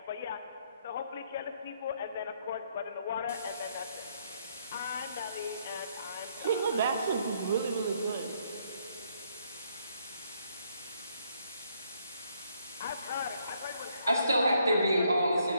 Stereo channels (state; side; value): inverted; both; correlation -0.71